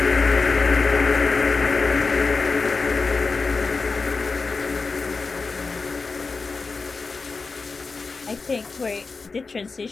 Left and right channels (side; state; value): right; quieter; 4.3 dB